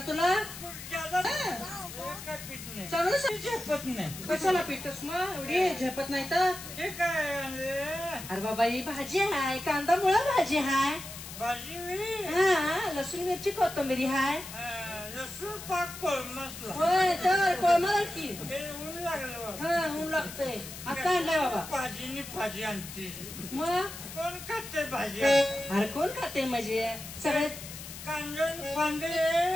तुला काय पीठ नाही चांगलं झेपत नाही कशाला पितोस मग एवढी झेपत नाही तर हे काय अरे बाबा ही भाजी हाय कांदा मुळा भाजी हाय भाजी हा लसूण मिरची कोथिंबीरी हाय लसूण पाक कोळमसला होय तर कोळमाला की ते ऊन लागलं हा ऊन लागतंय आता आणलाय बाबा भाजीनी भाजी आणते मग कोण खाते भाजी अरे कोण खाते म्हणजे सगळे कांदे फांदे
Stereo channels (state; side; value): noise; left; hiss, 12 dB below the sound